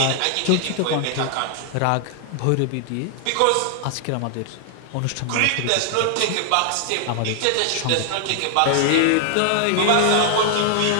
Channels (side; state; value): both; different; correlation 0.00